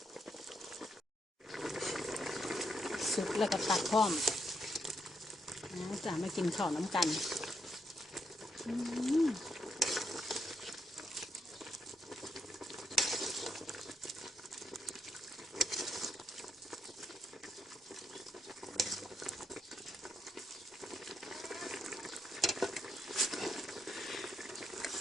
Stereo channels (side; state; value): both; normal; correlation 0.79